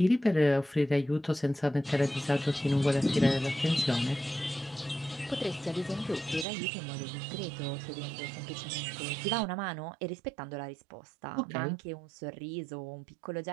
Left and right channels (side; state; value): left; drops out; at 6.5 s